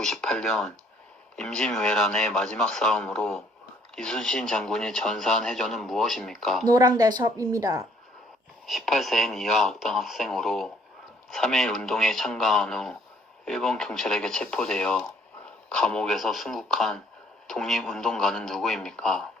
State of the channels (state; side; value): normal; both; correlation 0.62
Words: 임진왜란의 마지막 싸움으로 이순신 장군이 전사한 해전은 무엇입니까? 노랑 대첩입니다. 18세인 이하 악당 학생으로 3.1 운동에 참가한 후 일본 경찰에게 체포되어 감옥에서 순국한 독립운동가는 누구입니까?